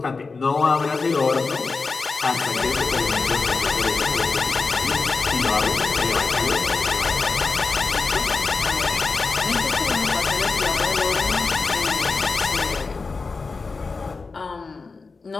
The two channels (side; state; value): right; quieter; 4.2 dB